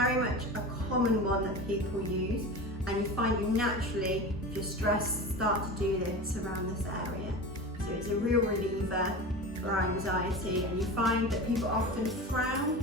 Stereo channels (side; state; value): both; normal; correlation 0.30